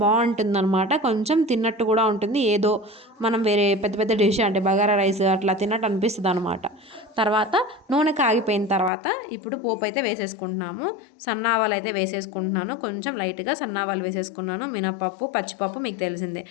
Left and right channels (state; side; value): drops out; right; at 8.9 s